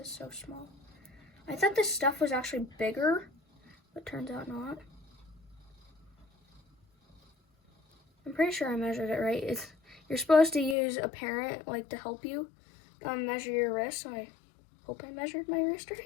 so small. I thought this stuff was actually bigger, but turns out not. I'm pretty sure I measured it right. You're supposed to use a parent to help you measure your wrist, so I hope I measured my wrist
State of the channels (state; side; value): drops out; right; at 10.8 s